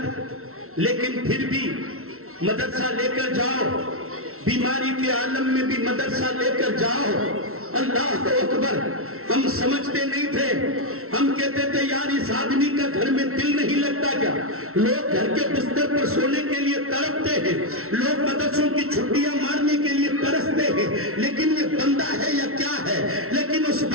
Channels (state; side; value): late; left; 0.63 ms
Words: لیکن پھر بھی مدرسہ لے کر جاؤ، بیماری کے عالم میں بھی مدرسہ لے کر جاؤ۔ اللہ اکبر، ہم سمجھتے نہیں تھے، ہم کہتے تھے یار اس آدمی کا گھر میں دل نہیں لگتا کیا؟ لوگ گھر کے بستر پر سونے کے لیے تڑپتے ہیں، لوگ مدرسوں کی چھٹیاں مارنے کے لیے ترستے ہیں، لیکن یہ بندہ ہے یا کیا ہے؟ لیکن اس